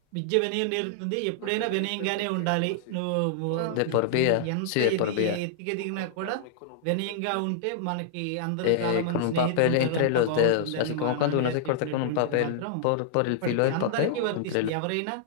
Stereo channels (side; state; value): both; different; correlation -0.01